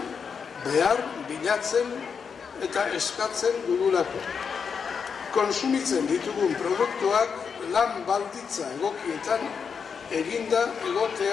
behar bilatzen eta eskatzen dugulako. Konsumitzen ditugun produktuak lan balditza egokietan eginda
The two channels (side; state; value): right; quieter; 6.2 dB